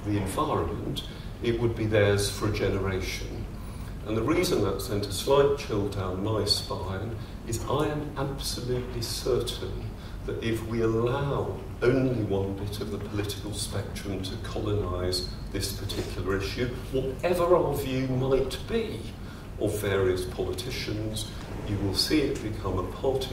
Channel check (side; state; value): both; identical; correlation 1.00